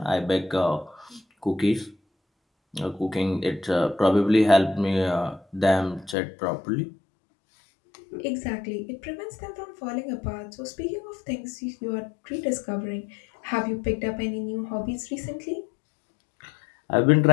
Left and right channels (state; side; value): drops out; right; at 6.2 s